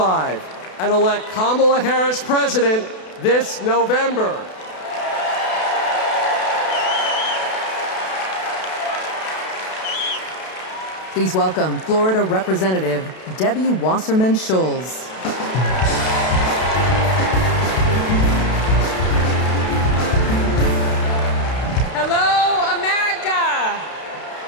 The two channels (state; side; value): late; right; 32 ms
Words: and elect Kamala Harris president this November. Please welcome Florida Representative Debbie Wasserman Schultz. Hello, America.